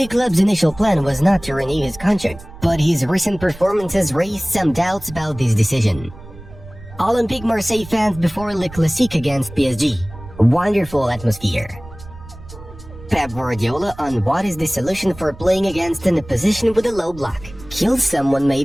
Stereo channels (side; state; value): right; noise; rumble, 17 dB below the sound